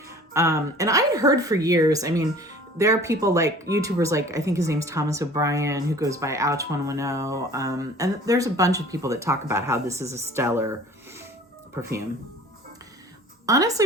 And I had heard for years, I mean, there are people like YouTubers, like I think his name's Thomas O'Brien, who goes by Ouch110. And there's a bunch of people that talk about how this is a stellar perfume. Honestly,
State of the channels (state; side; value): normal; both; correlation 0.46